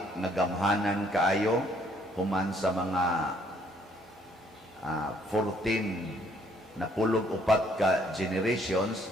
nga gamhanan kaayo human sa mga 14 na pulog upat ka generations.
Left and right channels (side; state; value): both; normal; correlation 0.65